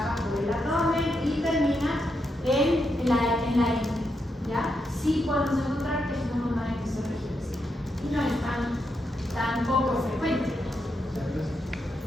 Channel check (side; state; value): both; normal; correlation 0.83